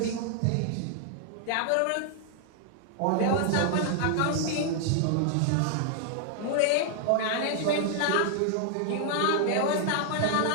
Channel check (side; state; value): both; different; correlation 0.00